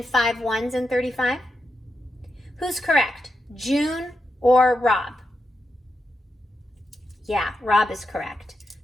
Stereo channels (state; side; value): normal; both; correlation 0.87